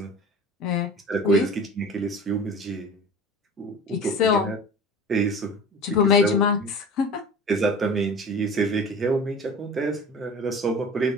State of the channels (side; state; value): both; normal; correlation 0.38